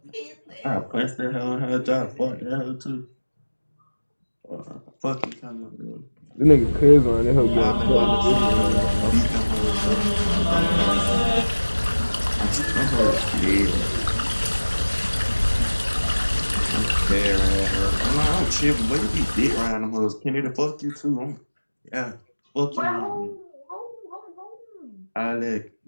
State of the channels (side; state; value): both; inverted; correlation -1.00